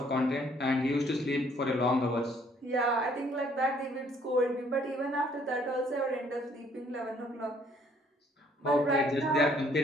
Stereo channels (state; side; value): normal; both; correlation 0.63